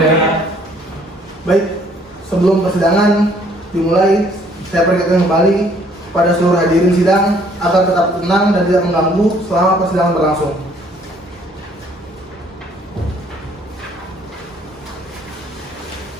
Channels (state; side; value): normal; both; correlation 0.62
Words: Baik, sebelum persidangan dimulai, saya peringatkan kembali pada seluruh hadirin sidang agar tetap tenang dan tidak mengganggu selama persidangan berlangsung.